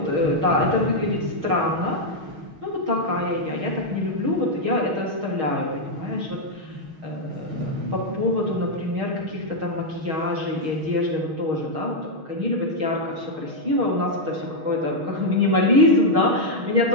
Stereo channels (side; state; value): left; late; 6.4 ms